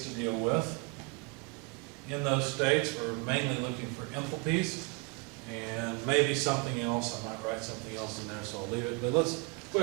to deal with. In those states, we're mainly looking for enthalpies and maybe something else. I might write something else in there, so I'll leave it. But let's go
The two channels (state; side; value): quieter; left; 28.6 dB